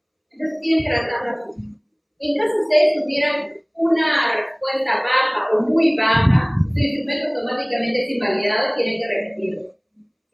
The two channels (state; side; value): identical; both; correlation 1.00